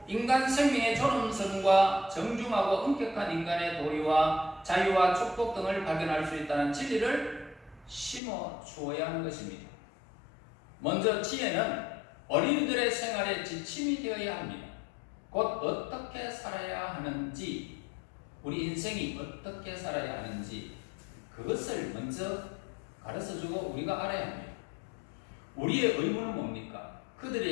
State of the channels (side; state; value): right; drops out; at 8.2 s